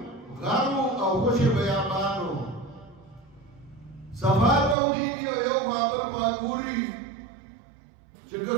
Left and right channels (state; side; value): drops out; left; at 4.8 s